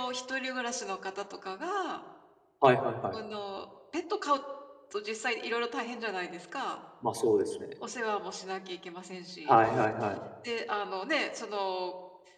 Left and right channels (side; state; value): both; identical; correlation 1.00